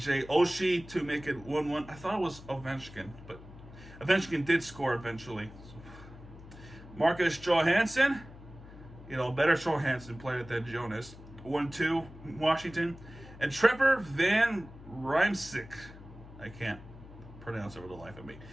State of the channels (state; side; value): noise; left; hum, 17 dB below the sound